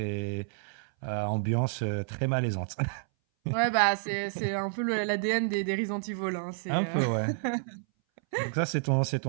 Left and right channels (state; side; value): silent; left; 58 dB below the other